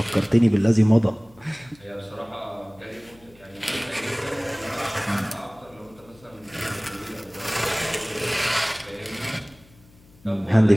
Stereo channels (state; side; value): noise; left; hum, 27 dB below the sound